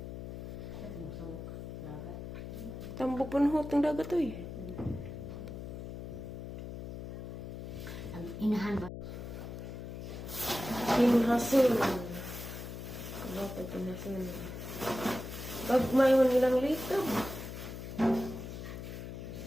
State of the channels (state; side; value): noise; left; hum, 8 dB below the sound